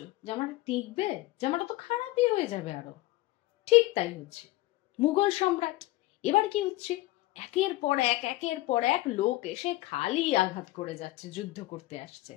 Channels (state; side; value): quieter; right; 18.1 dB